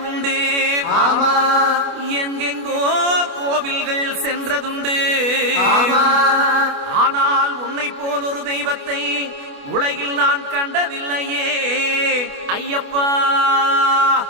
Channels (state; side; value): late; left; 28 ms